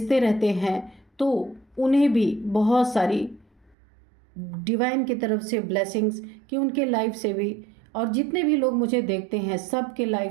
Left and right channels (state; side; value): drops out; left; at 3.8 s